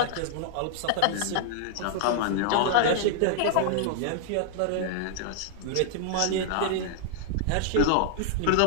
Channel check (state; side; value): different; both; correlation -0.01